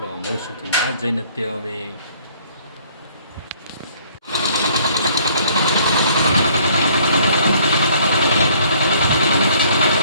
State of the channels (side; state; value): both; inverted; correlation -0.59